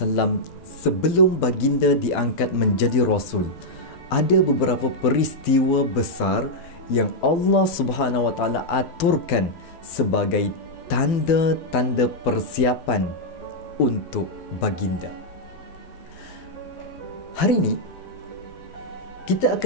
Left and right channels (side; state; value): right; late; 12 ms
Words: sebelum baginda diangkat menjadi Rasul, ada beberapa peristiwa besar yang Allah Subhanahu Wa Taala aturkan sebagai tanda-tanda persiapan untuk baginda. Hari ini kita